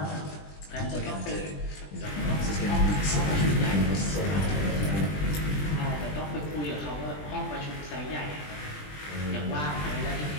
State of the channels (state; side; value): late; right; 20 ms